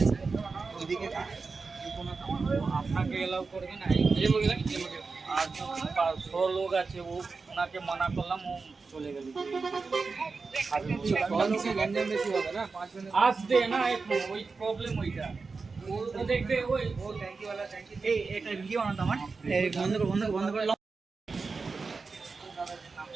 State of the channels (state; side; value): quieter; left; 4.4 dB